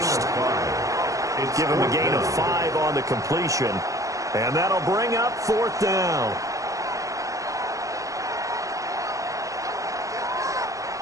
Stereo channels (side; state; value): left; late; 0.16 ms